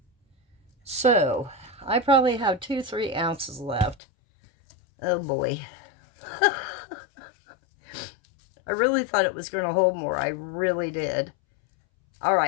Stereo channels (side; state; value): right; drops out; at 4.0 s